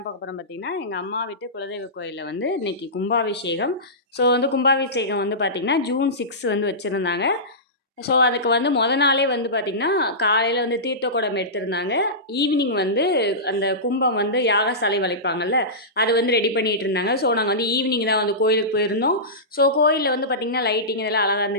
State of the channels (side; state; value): both; normal; correlation -0.18